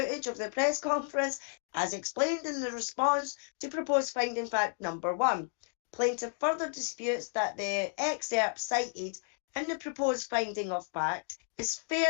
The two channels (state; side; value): silent; right; 56 dB below the other